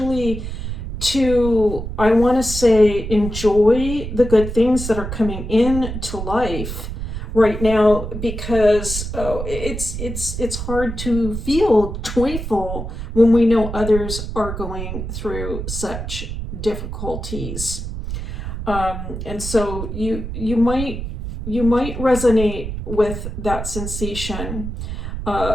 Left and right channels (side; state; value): right; noise; rumble, 6 dB below the sound